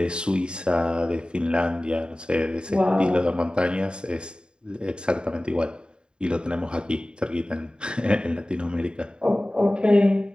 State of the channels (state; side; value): late; left; 0.050 ms